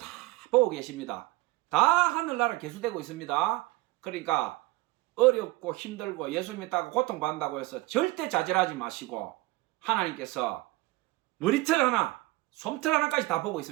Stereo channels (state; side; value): quieter; left; 20.2 dB